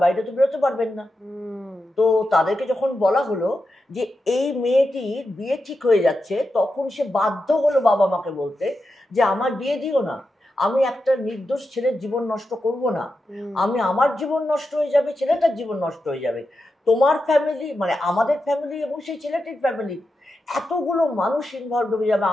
বাইরে তো বেরোতে পারবেন না। তো তাদেরকে যখন বলা হলো যে এই মেয়েটির বিয়ে ঠিক হয়ে যাচ্ছে, তখন সে বাধ্য হলো বাবা মাকে বলতে যে আমার বিয়ে দিও না, আমি একটা নির্দোষ ছেলের জীবন নষ্ট করব না, আমি আমার জীবন নষ্ট হয়ে যাবে, ছেলেটার জীবন নষ্ট হয়ে যাবে, তোমার ফ্যামিলি মানে আমাদের ফ্যামিলি এবং সেই ছেলেটির ফ্যামিলি, এতগুলো মানুষ ইনভলভ হয়ে যাবে,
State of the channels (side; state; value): both; normal; correlation 0.89